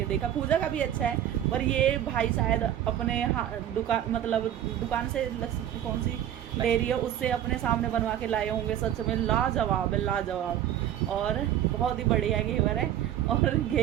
देखा। पूजा का भी अच्छा है, पर ये भाई शायद अपने दुकान, मतलब दुकान से कौन सी डेयरी है उससे अपने सामने बनवा के लाए होंगे। सच में लाजवाब है, लाजवाब, और बहुत ही बढ़िया घेवर है। और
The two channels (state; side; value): quieter; left; 11.2 dB